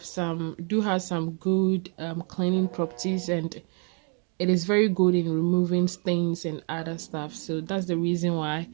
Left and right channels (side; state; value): left; quieter; 39.6 dB